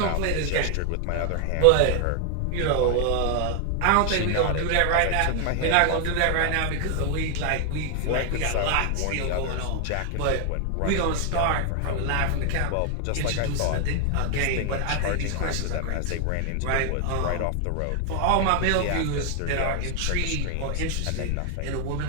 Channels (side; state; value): both; different; correlation 0.00